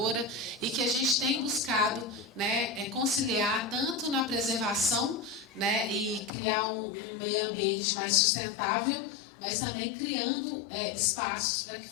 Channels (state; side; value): drops out; right; at 6.3 s